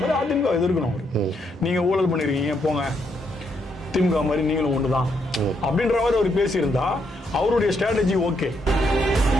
மாதிரி அதிமுக எதிர்க்கணும். நீங்க ஊழல் பண்ணிருக்கீங்க போங்க, திமுக மாதிரி நீங்களும் ஒண்ணுதான் அப்படின்ற மாதிரி அவர் பேசியிருந்தா அவருடைய ஸ்ட்ராட்டஜி ஓகே.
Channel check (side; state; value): both; normal; correlation 0.76